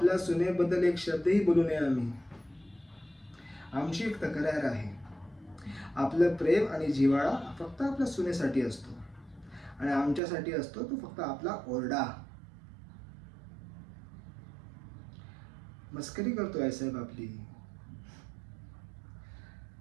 सुनेबद्दल एक शब्दही बोलू नये आम्ही. आमची एक तक्रार आहे. आपलं प्रेम आणि जिव्हाळा फक्त आपल्या सुनेसाठी असतो आणि आमच्यासाठी असतो तो फक्त आपला ओरडा. मस्करी करतो आईसाहेब आपली.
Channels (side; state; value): left; drops out; at 10.2 s